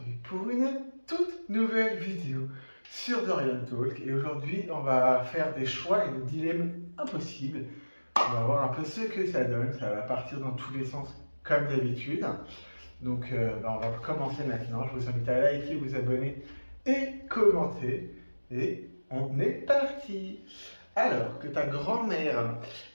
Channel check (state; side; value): inverted; both; correlation -1.00